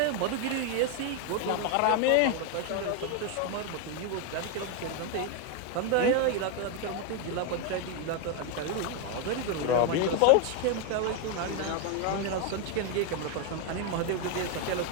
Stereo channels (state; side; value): different; both; correlation 0.01